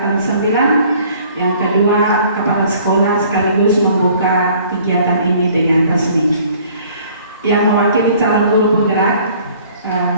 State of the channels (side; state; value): both; inverted; correlation -0.55